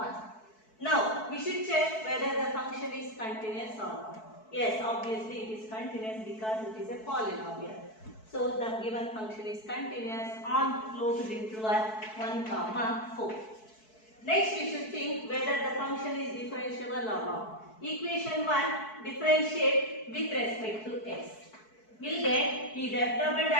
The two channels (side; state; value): right; late; 4.6 ms